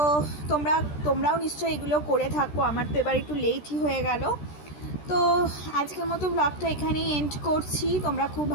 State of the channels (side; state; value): right; late; 13 ms